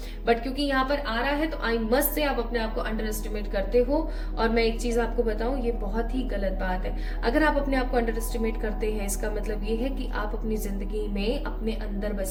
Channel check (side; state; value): both; identical; correlation 1.00